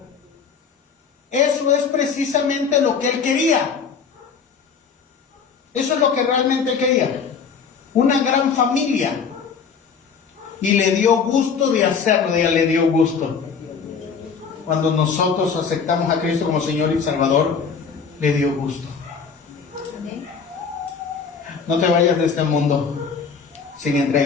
Eso es precisamente lo que Él quería. Eso es lo que realmente quería. Una gran familia. Y le dio gusto de hacerlo. Ella le dio gusto. Cuando nosotros aceptamos a Cristo como Señor y Salvador, le dio gusto. No te vayas de este mundo sin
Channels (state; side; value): quieter; right; 6.0 dB